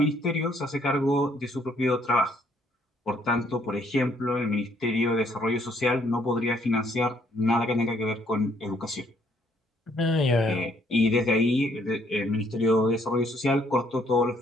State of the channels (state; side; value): normal; both; correlation 0.67